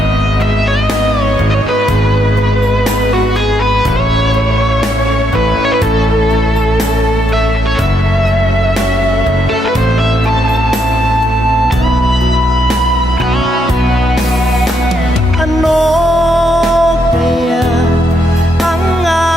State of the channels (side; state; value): both; normal; correlation 0.77